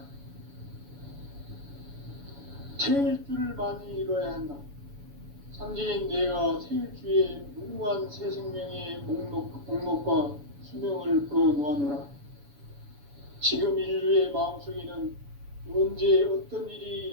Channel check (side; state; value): left; late; 7.0 ms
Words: 태일주를 많이 읽어야 한다. 상제인 내가 태일주의 무궁한 새 생명의 목록과 수명을 불어놓아노라. 지금 인류의 마음속에는 언제 어떤 일이